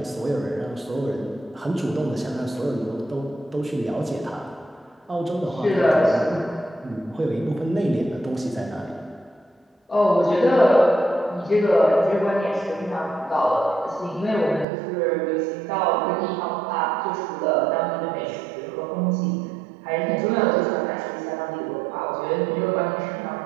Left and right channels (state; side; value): drops out; left; at 14.7 s